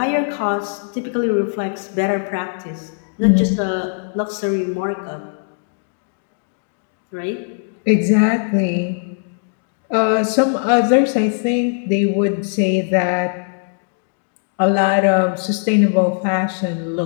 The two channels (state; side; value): silent; right; digital silence